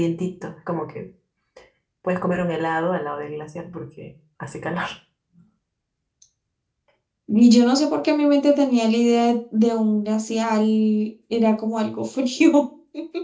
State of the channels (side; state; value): both; identical; correlation 1.00